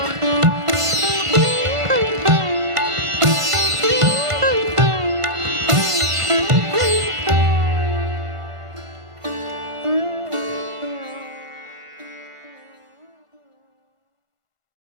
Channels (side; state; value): left; late; 1.5 ms